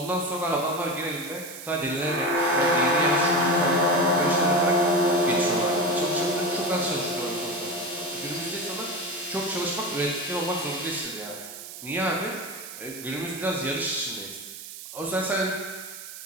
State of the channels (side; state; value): right; noise; hiss, 12 dB below the sound